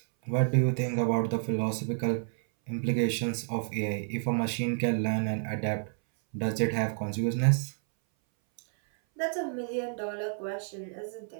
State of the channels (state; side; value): silent; left; 58 dB below the other